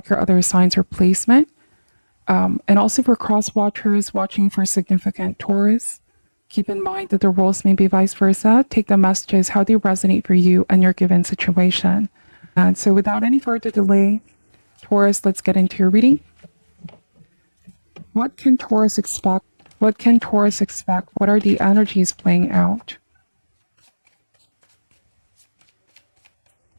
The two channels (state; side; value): inverted; both; correlation -1.00